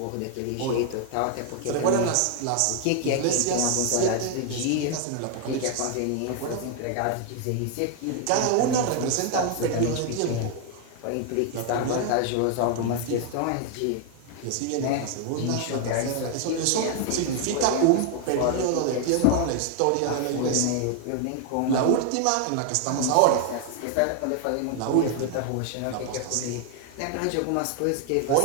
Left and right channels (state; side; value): different; both; correlation 0.00